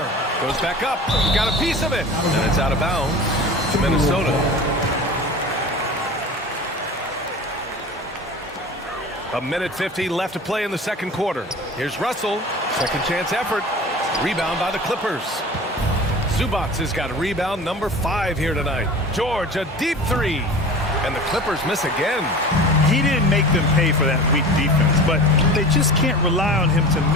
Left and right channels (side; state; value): both; normal; correlation 0.37